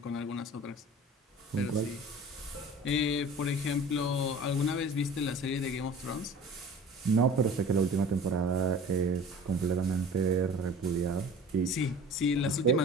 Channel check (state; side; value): normal; both; correlation 0.42